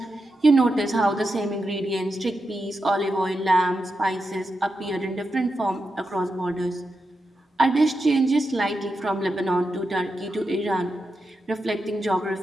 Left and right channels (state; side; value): normal; both; correlation 0.88